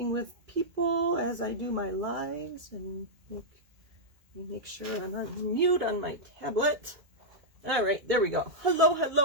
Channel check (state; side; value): late; left; 2.0 ms